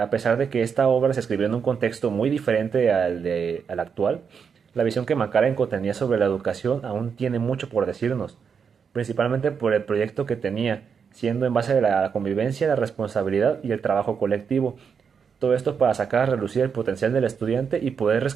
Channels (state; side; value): quieter; left; 6.5 dB